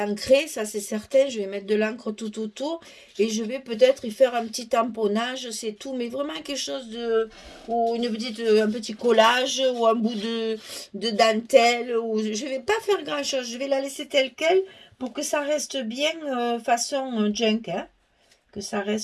ça c'est certain. Je vais mettre de l'encre tout autour et je vais peut-être y faire un petit tamponnage, c'est tout, mais vraiment quelque chose de, ou un petit collage ou un bout de dentelle. Ou je vais pas faire grand chose, je vais la laisser telle quelle pour que ça reste bien façon junk, hein, que ça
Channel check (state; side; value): identical; both; correlation 1.00